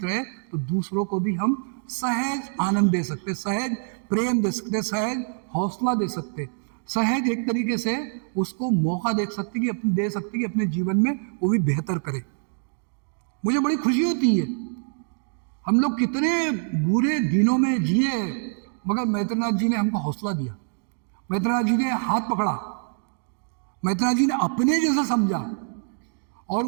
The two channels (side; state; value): left; silent; 62 dB below the other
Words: रहे, तो दूसरों को भी हम सहज आनंद दे सकते, सहज प्रेम दे सकते, सहज हौसला दे सकते, सहज एक तरीके से उसको मौका दे सकते कि अपने जीवन में वो भी बेहतर करे। मुझे बड़ी खुशी होती है, हम लोग कितने बुरे दिनों में जिए, मगर मैत्रेयनाथ जी ने हमको हौसला दिया, मैत्रेयनाथ जी ने हाथ पकड़ा, मैत्रेयनाथ जी ने अपने जैसा समझा, और